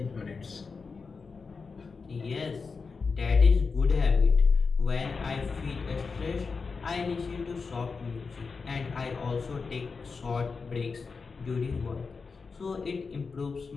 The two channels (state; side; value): quieter; right; 4.8 dB